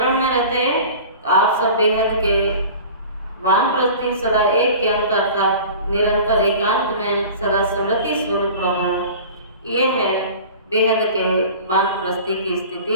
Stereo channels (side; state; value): both; inverted; correlation -0.40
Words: में रहते। तो आप सब बेहद के वानप्रस्थी सदा एक के अंत अर्थात निरंतर एकांत में सदा स्मृति स्वरूप रहो। यह है बेहद के वानप्रस्थी की